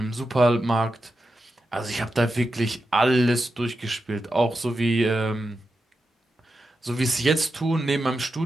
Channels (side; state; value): both; normal; correlation 0.89